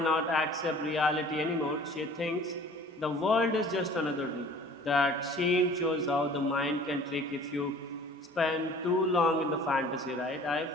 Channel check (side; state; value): both; normal; correlation 0.48